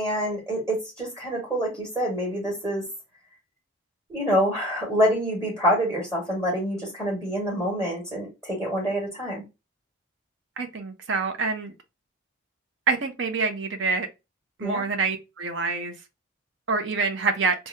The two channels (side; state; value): both; normal; correlation 0.30